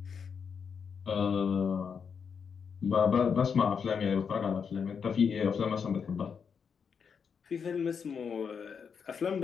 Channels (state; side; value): quieter; right; 6.4 dB